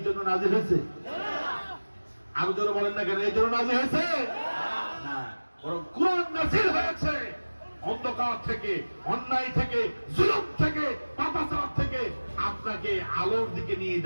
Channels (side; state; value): both; inverted; correlation -1.00